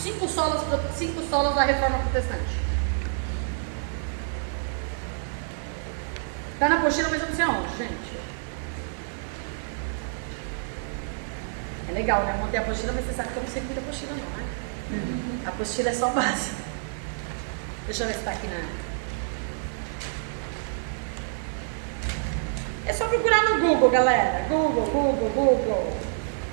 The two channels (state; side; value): silent; left; digital silence